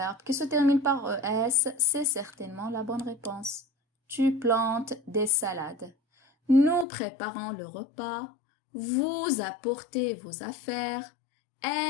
qui se termine par ES, c'est certainement la bonne réponse. Tu plantes des salades. Nous préparons le repas. Vous apportez vos affaires.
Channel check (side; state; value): right; drops out; at 6.9 s